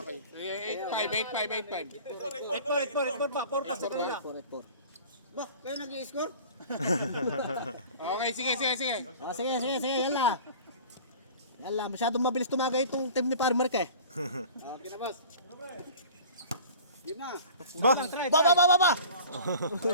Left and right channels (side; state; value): both; inverted; correlation -0.42